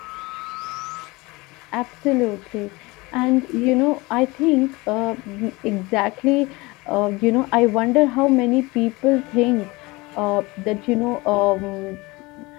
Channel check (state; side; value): quieter; right; 23.3 dB